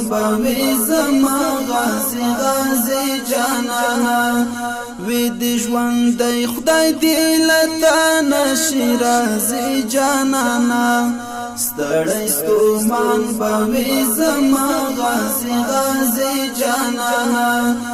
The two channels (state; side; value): identical; both; correlation 1.00